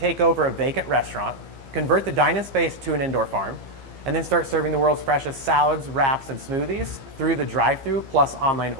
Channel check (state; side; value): late; left; 15 ms